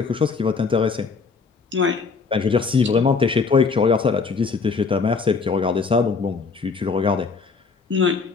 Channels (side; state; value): right; quieter; 4.8 dB